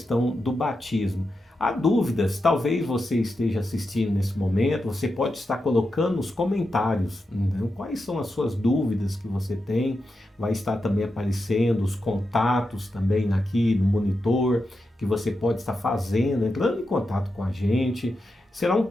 do batismo. Há dúvidas, talvez você esteja assistindo nesse momento, você pode estar colocando nos comentários, né, quais são as suas dúvidas que você tem, vai estar também aparecendo os contatos também aqui no monitor, que você pode estar fazendo, entrando em contato com a gente. Será um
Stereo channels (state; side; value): normal; both; correlation 0.88